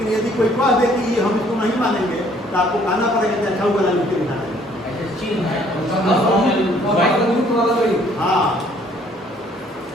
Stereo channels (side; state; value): both; normal; correlation 0.61